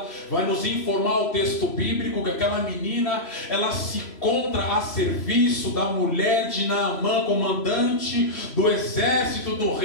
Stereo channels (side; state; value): right; late; 3.0 ms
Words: vai nos informar o texto bíblico que aquela menina, ela se encontra a serviço da mulher de Naamã, comandante do exército do